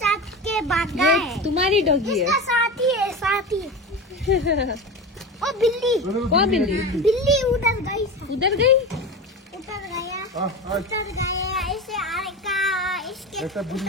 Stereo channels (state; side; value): normal; both; correlation 0.26